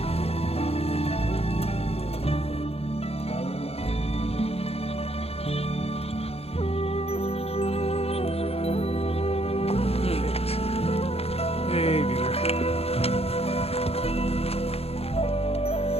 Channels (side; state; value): right; late; 0.29 ms